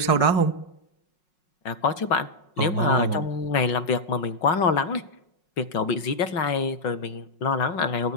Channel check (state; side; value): late; right; 5.5 ms